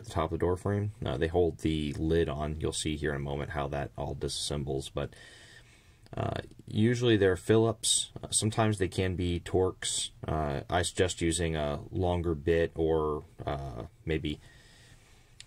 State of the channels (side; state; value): both; identical; correlation 1.00